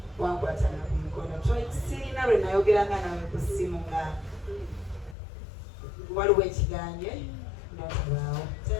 Wankwatana ku mukono. Sirina lwe nayogeranga nawe ku ssimu nga waliwo ekiganye notabaawo.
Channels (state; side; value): drops out; right; at 5.2 s